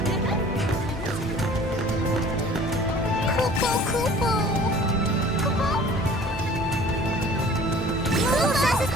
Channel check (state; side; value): normal; both; correlation 0.48